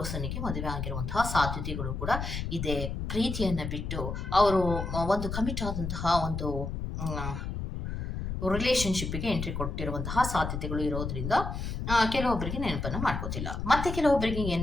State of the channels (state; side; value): noise; left; rumble, 4 dB below the sound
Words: ಮದುವೆ ಆಗಿರುವಂತಹ ಸಾಧ್ಯತೆಗಳು ಕೂಡ ಇದೆ. ಪ್ರೀತಿಯನ್ನ ಬಿಟ್ಟು ಅವರು ಒಂದು ಕಮಿಟ್ ಆದಂತಹ ಒಂದು ರಿಲೇಶನ್‌ಶಿಪ್‌ಗೆ ಎಂಟ್ರಿ ಕೊಟ್ಟಿರುವಂತಹ ಸಾಧ್ಯತೆಗಳು ಇರೋದ್ರಿಂದ ಕೆಲವೊಬ್ಬರಿಗೆ ನೆನಪನ್ನ ಮಾಡ್ಕೋತಿಲ್ಲ. ಮತ್ತೆ ಕೆಲವೊಬ್ಬರಿಗೆ